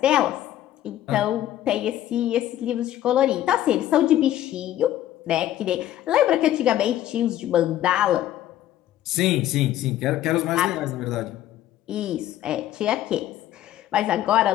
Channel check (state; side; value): quieter; right; 12.8 dB